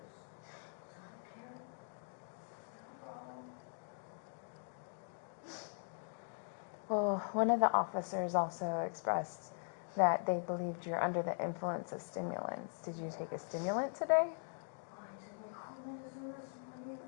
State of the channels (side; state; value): right; silent; digital silence